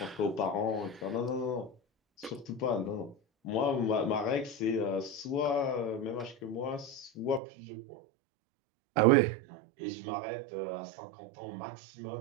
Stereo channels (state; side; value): drops out; left; at 7.4 s